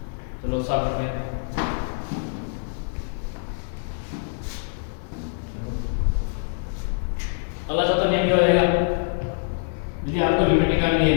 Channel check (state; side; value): silent; right; digital silence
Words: चलो साफ करते हैं। अगला चौथा नियम क्या हो जाएगा, यदि आपको लिमिट निकालनी है